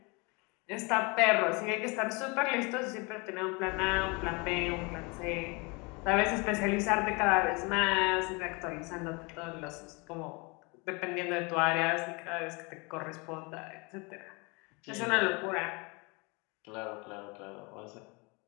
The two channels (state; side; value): quieter; right; 29.0 dB